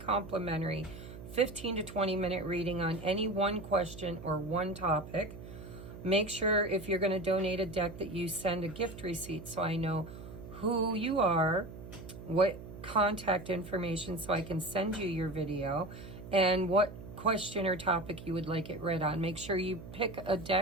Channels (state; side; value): noise; right; hum, 13 dB below the sound